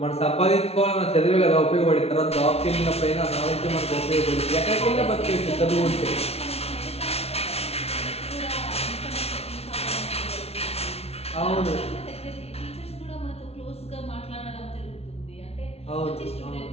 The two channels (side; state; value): right; late; 0.30 ms